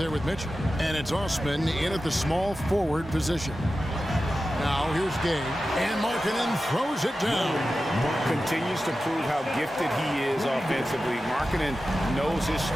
with Mitchell. And it's Osman in at the small forward position. Now here's Gay, and Markkanen throws it down. Continues to prove how gifted he is offensively. Markkanen knows his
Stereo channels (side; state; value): both; normal; correlation 0.93